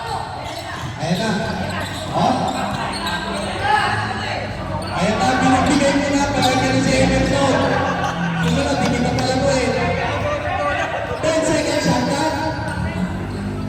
Ayan na. Oh. Ayan na, binibigay mo na, palagi ka si Emerson. Susunod, hindi ka pala ko eh. 10 seconds shot na.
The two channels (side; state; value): both; identical; correlation 1.00